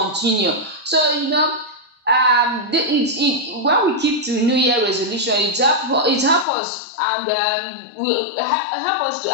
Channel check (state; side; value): drops out; right; at 6.5 s